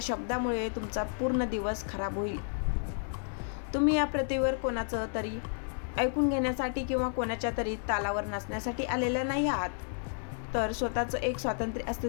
शब्दामुळे तुमचा पूर्ण दिवस खराब होईल. तुम्ही या पृथ्वीवर कोणाचं तरी ऐकून घेण्यासाठी किंवा कोणाच्या तरी तालावर नाचण्यासाठी आलेला नाही आहात, तर स्वतःचं एक स्वातंत्र्य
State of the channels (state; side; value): silent; right; 57 dB below the other